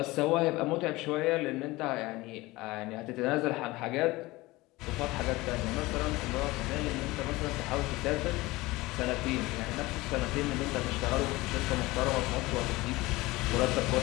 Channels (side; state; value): right; quieter; 20.5 dB